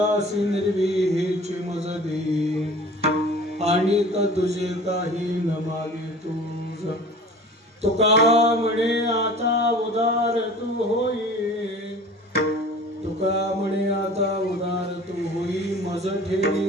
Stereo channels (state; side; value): normal; both; correlation 0.43